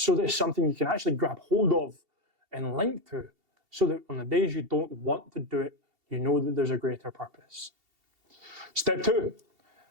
that it's something you can actually grab hold of and link to, so that on the days you don't want to do it, you know that there's a greater purpose. Step 2,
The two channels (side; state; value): left; late; 2.7 ms